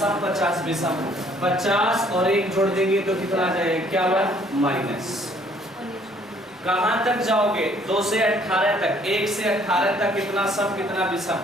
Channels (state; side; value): normal; both; correlation 0.61